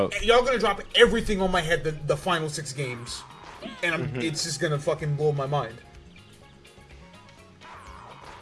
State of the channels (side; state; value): both; identical; correlation 1.00